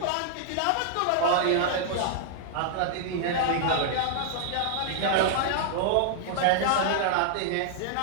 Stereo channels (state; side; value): different; both; correlation -0.01